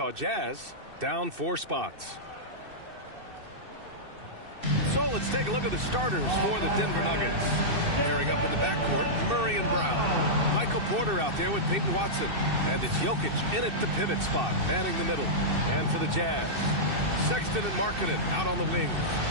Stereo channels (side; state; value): left; late; 2.6 ms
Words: Jazz down 4 spots. So let's take a look at the starters for the Denver Nuggets. Pairing up in the backcourt, Murray and Brown. Michael Porter out there with Peyton Watson. And it's Jokic in at the pivot spot, manning the middle. And for the Jazz, Sexton and Markkanen out on the wings.